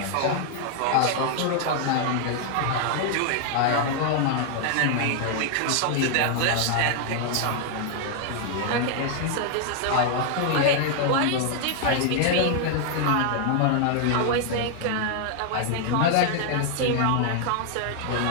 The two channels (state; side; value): different; both; correlation 0.00